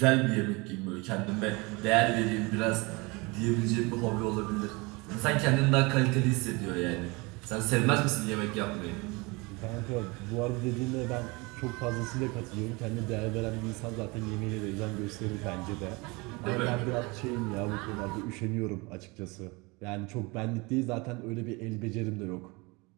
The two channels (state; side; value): quieter; left; 26.1 dB